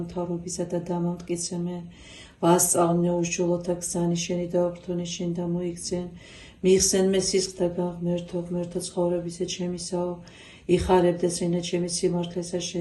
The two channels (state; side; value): identical; both; correlation 1.00